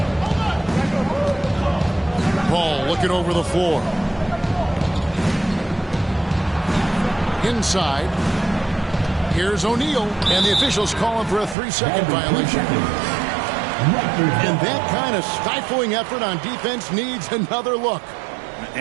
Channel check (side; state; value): left; drops out; at 11.6 s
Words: Paul looking over the floor. Inside. Here's O'Neal. And the officials calling for a 3-second violation. And that kind of stifling effort on defense needs another look.